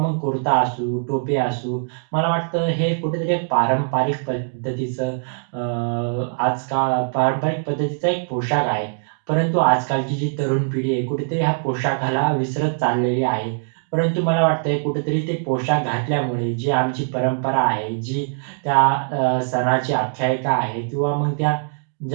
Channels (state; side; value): silent; left; digital silence